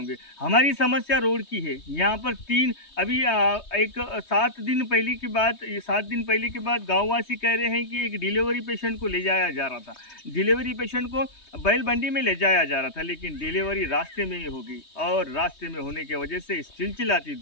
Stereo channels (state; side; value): late; right; 3.2 ms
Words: हमारी समस्या रोड की है। यहाँ पर अभी 7 दिन पहले की बात गाँववासी कह रहे हैं कि एक डिलीवरी पेशेंट को ले जाया जा रहा था। डिलीवरी पेशेंट को बैल मंडी में ले जाया जा रहा था, लेकिन डिलीवरी रास्ते में ही हो गई, और रास्ते में होने की वजह से इस चिलचिलाती